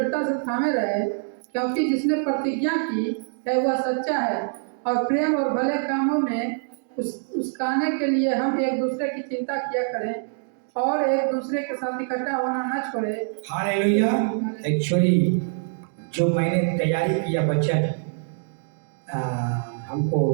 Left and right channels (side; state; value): left; silent; digital silence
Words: से थामे रहे, क्योंकि जिसने प्रतिज्ञा की है वह सच्चा है, और प्रेम और भले कामों में उसकाने के लिए हम एक दूसरे की चिंता किया करें और एक दूसरे के साथ इकट्ठा होना न छोड़े। हालेलुया। एक्चुअली जो मैंने तैयारी किया वचन हमको